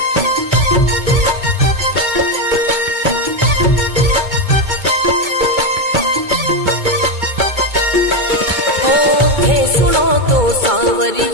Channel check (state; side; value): late; left; 2.2 ms